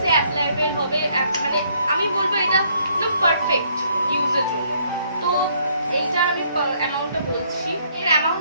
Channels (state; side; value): inverted; both; correlation -0.67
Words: অ্যাপ্লাইবেল হবে, মানে আমি বলবো এটা একদম পারফেক্ট ইউজের জন্য। তো এইটা আমি অ্যামাউন্টটা বলছি, এর